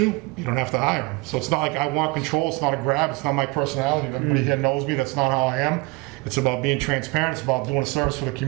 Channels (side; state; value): left; quieter; 25.1 dB